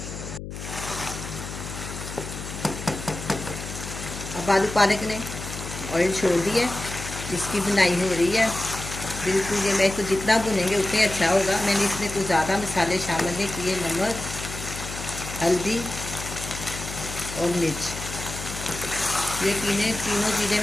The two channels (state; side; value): noise; left; hum, 9 dB below the sound